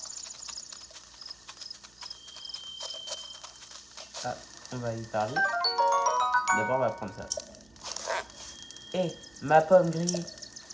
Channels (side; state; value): right; noise; hum, 30 dB below the sound